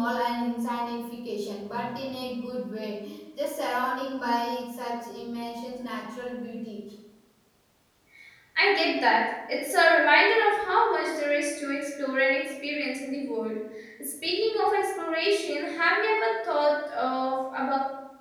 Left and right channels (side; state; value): both; identical; correlation 1.00